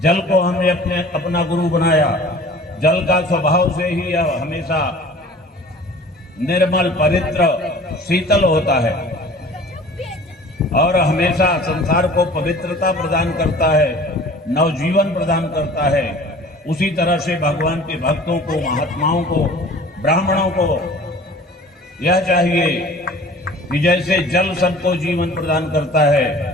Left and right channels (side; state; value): both; normal; correlation 0.45